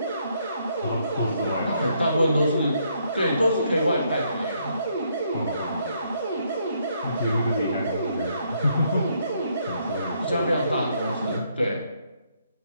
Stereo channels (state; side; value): inverted; both; correlation -0.72